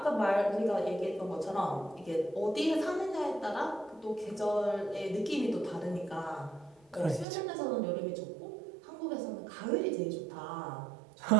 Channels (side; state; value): left; drops out; at 7.2 s